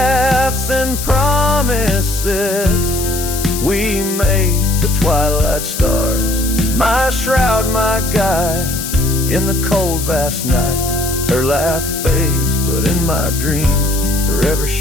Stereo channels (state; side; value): noise; left; hiss, 6 dB below the sound